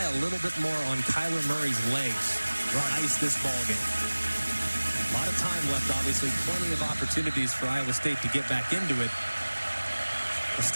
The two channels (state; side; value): inverted; both; correlation -1.00